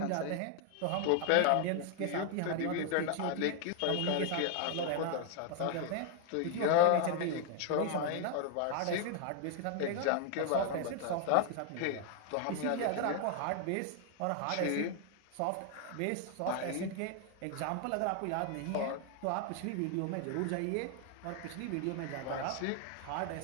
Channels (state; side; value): different; both; correlation 0.00